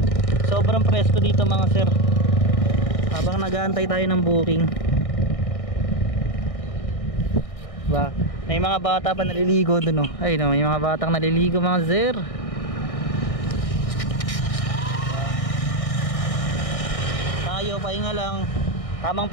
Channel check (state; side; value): late; right; 1.6 ms